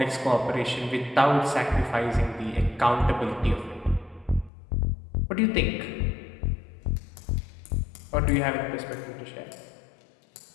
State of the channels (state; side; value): drops out; right; at 4.5 s